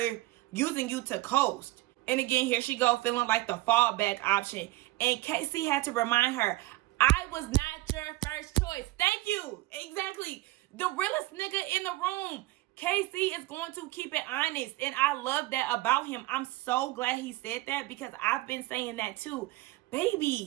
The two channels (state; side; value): quieter; left; 18.6 dB